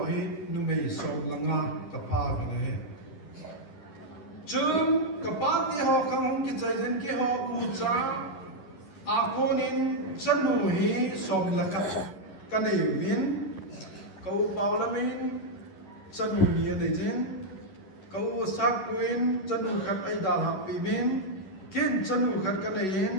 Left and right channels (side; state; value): right; late; 11 ms